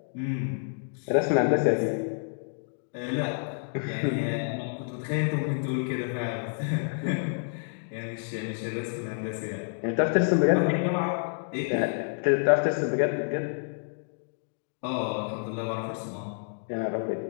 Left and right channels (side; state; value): right; silent; digital silence